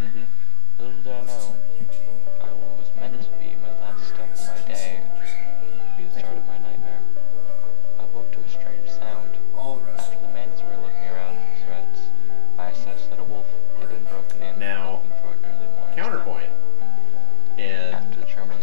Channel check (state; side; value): different; both; correlation 0.00